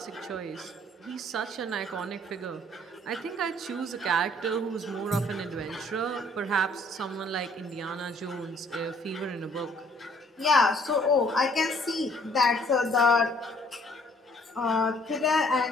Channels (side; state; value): both; normal; correlation 0.61